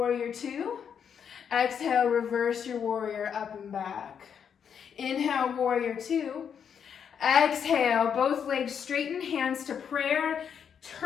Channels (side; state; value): right; quieter; 7.6 dB